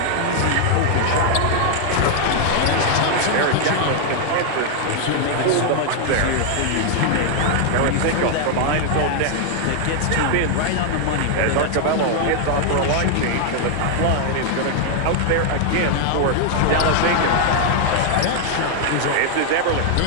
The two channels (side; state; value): both; different; correlation 0.00